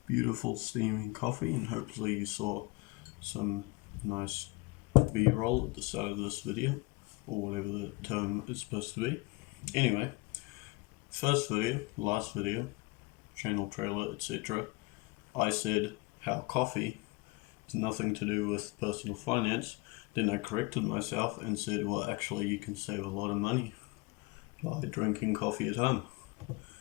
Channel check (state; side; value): quieter; right; 23.9 dB